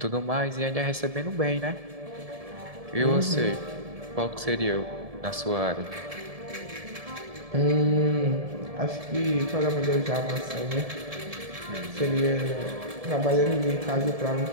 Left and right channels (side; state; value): left; late; 1.7 ms